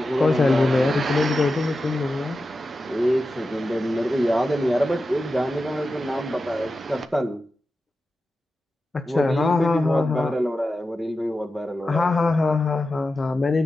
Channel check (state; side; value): normal; both; correlation 0.91